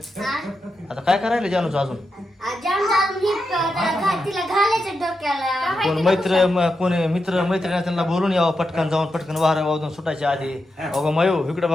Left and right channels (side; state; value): both; normal; correlation 0.87